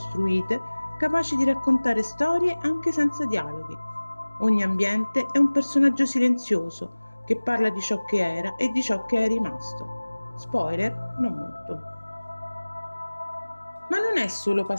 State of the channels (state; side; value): inverted; both; correlation -1.00